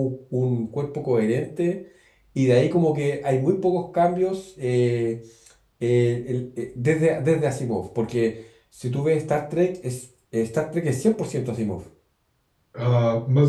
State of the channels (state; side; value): identical; both; correlation 1.00